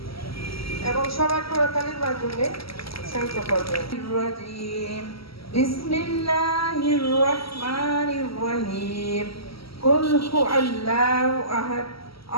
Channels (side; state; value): right; late; 0.75 ms